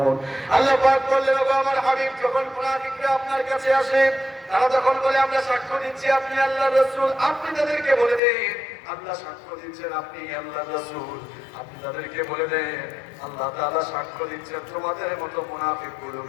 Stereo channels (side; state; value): right; drops out; at 8.2 s